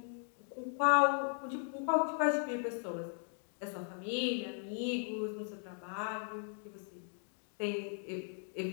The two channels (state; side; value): silent; right; 53 dB below the other